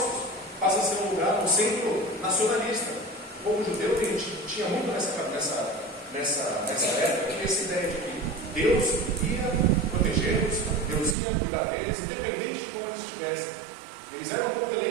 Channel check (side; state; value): left; drops out; at 11.2 s